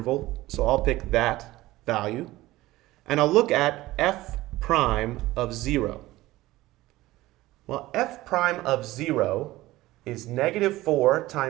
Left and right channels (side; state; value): left; quieter; 17.6 dB